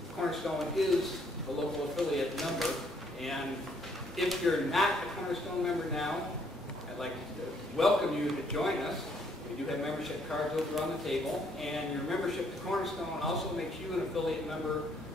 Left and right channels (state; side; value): normal; both; correlation 0.68